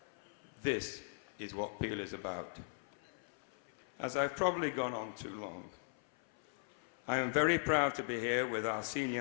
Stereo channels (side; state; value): right; silent; 52 dB below the other